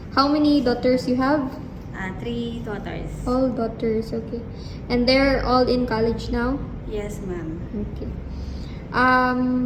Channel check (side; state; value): both; identical; correlation 1.00